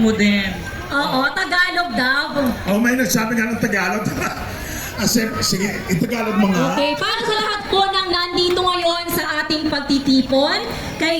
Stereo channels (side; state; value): both; identical; correlation 1.00